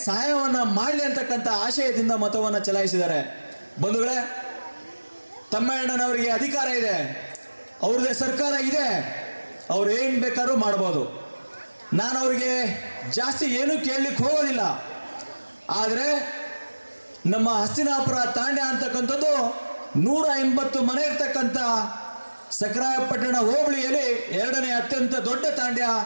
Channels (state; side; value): inverted; both; correlation -1.00